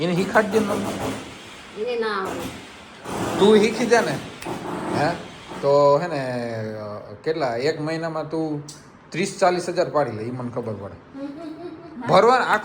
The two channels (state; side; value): identical; both; correlation 1.00